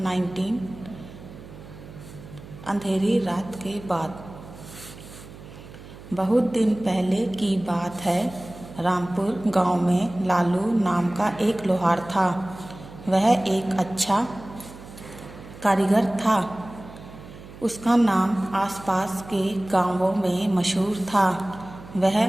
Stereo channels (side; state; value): right; noise; hum, 17 dB below the sound